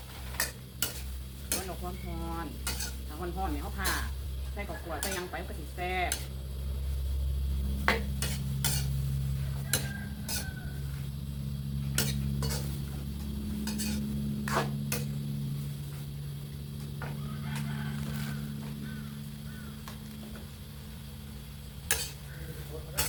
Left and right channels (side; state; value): both; identical; correlation 1.00